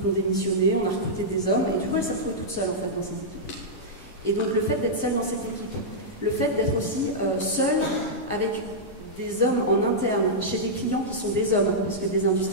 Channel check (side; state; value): right; late; 10 ms